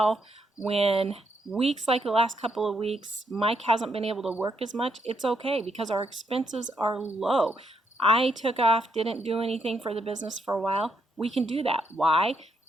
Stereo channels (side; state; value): both; normal; correlation 0.77